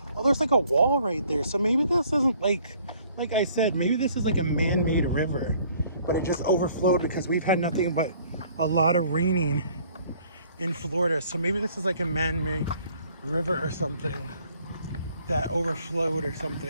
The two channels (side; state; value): both; inverted; correlation -0.59